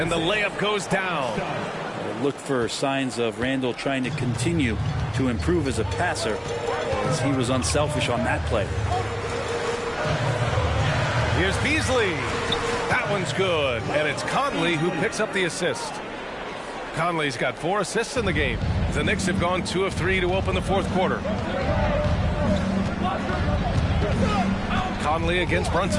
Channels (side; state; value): both; identical; correlation 1.00